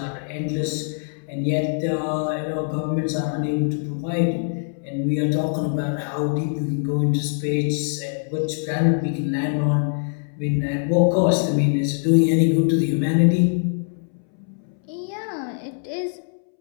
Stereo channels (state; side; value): silent; right; 63 dB below the other